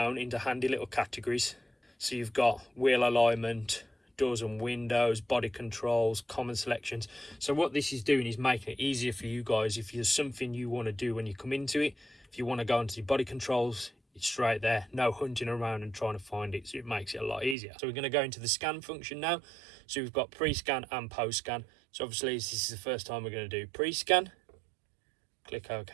into handy little categories. So you've got wheel alignment, doors and windows, body controls, common selections. So what this is doing is making it easier for you guys. If there's something you want to do when you come into it, if you want to go into the body controls, it's straight there. No hunting around and trying to find it. So it makes it a lot easier. So we're going to go into the scan function now. So we've got pre-scan and post-scan. So obviously this is the first time we're going to do pre-scan. Click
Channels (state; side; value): drops out; left; at 17.6 s